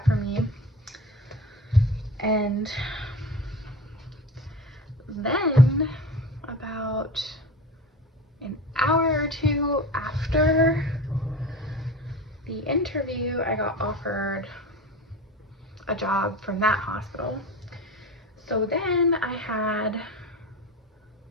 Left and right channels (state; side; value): normal; both; correlation 0.32